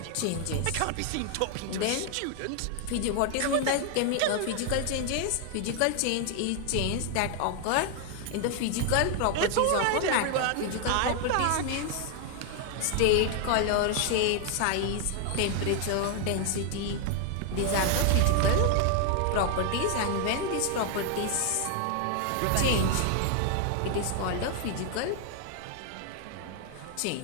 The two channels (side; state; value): both; different; correlation 0.00